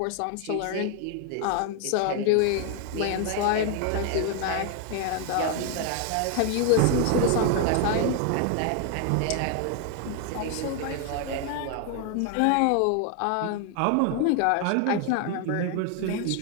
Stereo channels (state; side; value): different; both; correlation 0.00